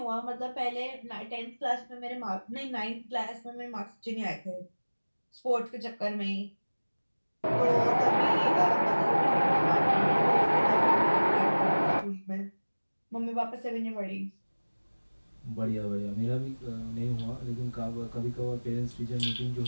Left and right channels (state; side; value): inverted; both; correlation -1.00